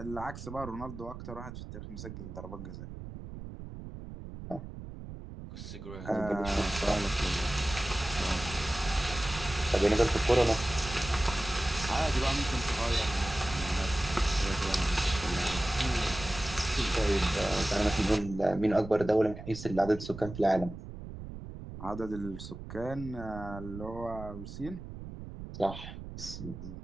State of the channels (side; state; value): right; noise; rumble, 11 dB below the sound